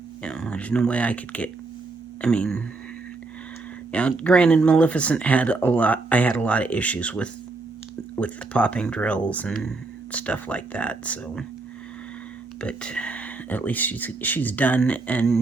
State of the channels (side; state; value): left; quieter; 3.6 dB